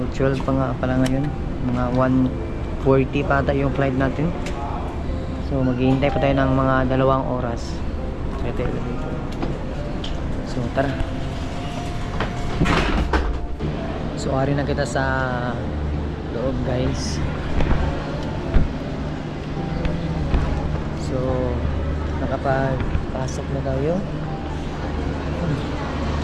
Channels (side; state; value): both; identical; correlation 1.00